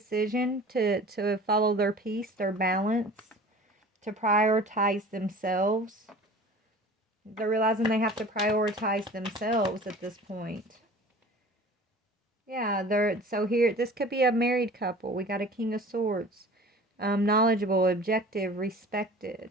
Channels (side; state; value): both; normal; correlation 0.43